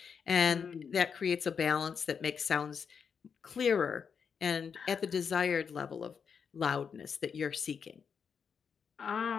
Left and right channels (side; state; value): right; quieter; 6.5 dB